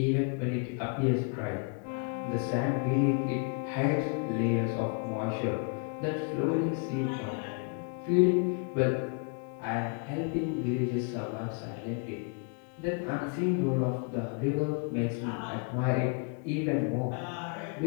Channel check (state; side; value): quieter; right; 35.6 dB